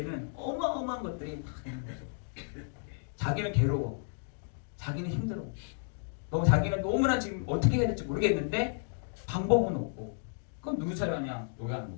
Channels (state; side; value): silent; right; digital silence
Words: 어마어마한 것들이 다 있는 거죠. 자기는 괴로워. 자기는 힘들어. 자기는 너무나 지금 어떻게 해야 될지 모르겠는데 방법은 없고 그럼 누구 차례하냐? 요구하는